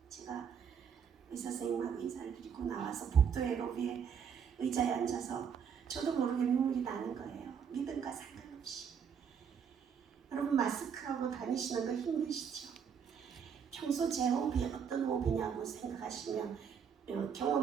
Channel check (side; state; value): left; quieter; 7.2 dB